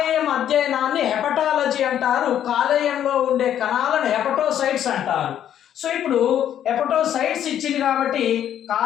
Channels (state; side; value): quieter; right; 10.3 dB